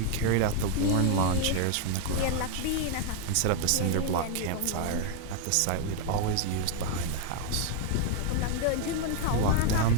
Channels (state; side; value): different; both; correlation 0.00